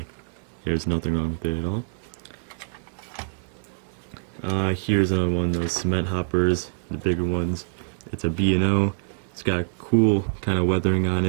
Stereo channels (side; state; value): left; silent; 62 dB below the other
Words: nothing wrong with it at all. Here's another one of those cement hoppers, the bigger ones. It's a BNO. It's got cool kind of weathering on